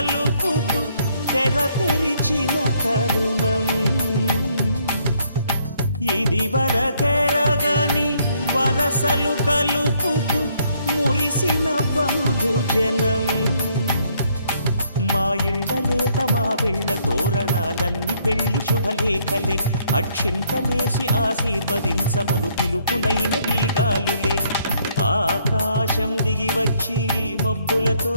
తెర తెరిచిన తరుణం ఇది వరకెరగని వరసలు కలుపుతూ మురిసిన బంధుజనం. మా ఇళ్ళలేత మా వెళ్ళ తోరణాలన్నీ పెళ్లి శుభలేఖలే. అక్షింతలేసి ఆశీర్వదించమను పిలుపులైన వీగాలులే. ఆకాశం దిగి వచ్చి మబ్బులతో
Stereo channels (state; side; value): inverted; both; correlation -0.68